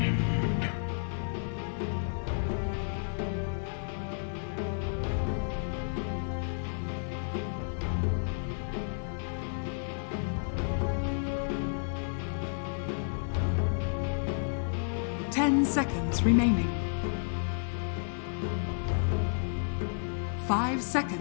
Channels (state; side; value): silent; right; digital silence